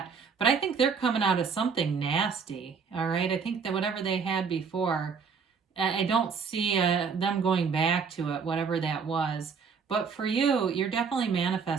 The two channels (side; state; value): left; quieter; 5.8 dB